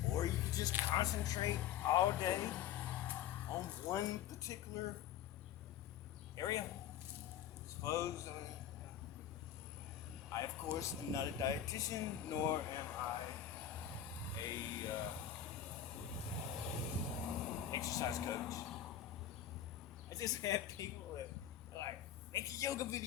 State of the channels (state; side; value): quieter; right; 10.1 dB